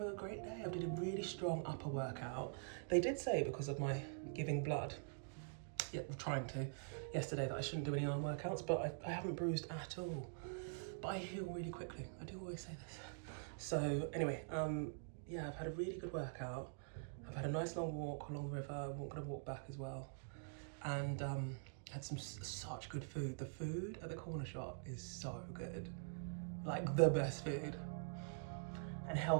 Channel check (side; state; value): left; silent; digital silence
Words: a great day. I did a really strong upper workout. They did say because of my giving blood, trying to, yesterday, that I shouldn't do any arm workouts, but I haven't bruised at all. But I heal really quickly. I do always say this. So anyway, yeah, I've had a really good workout. I've had a nice long walk along the river. I'm gonna walk back as well. And had such good food. The food at the Cornershop is so good. Like the best food. And